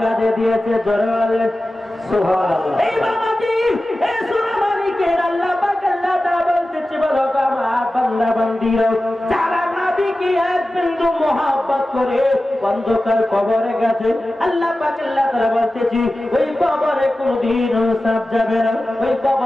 কাজে দিয়েছে জোরে বলেন সুবহানাল্লাহ এই বাবাজি এই সূরা মালিকের আল্লাহ পাক আল্লাহ তাআলা বলতেছে বলো আমার বান্দা বান্দিরা যারা নবীকে এক বিন্দু মহব্বত করে অন্ধকার কবরে গেছে আল্লাহ পাক আল্লাহ তাআলা বলতেছে ওই কবরে কোনদিন সাপ যাবে না ওই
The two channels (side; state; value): both; normal; correlation 0.95